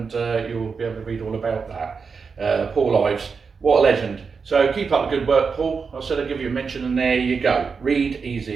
you'll be able to read all about that. Paul Ives, what a legend. So keep up the good work, Paul. I said I'd give you a mention, and there you go. Read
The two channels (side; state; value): left; quieter; 5.3 dB